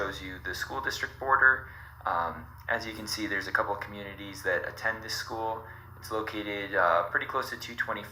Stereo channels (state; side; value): identical; both; correlation 1.00